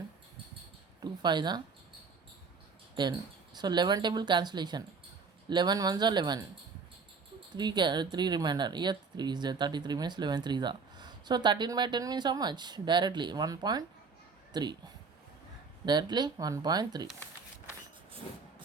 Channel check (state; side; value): quieter; left; 5.0 dB